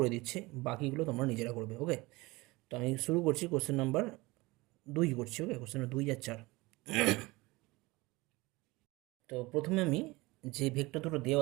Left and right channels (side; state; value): left; quieter; 22.1 dB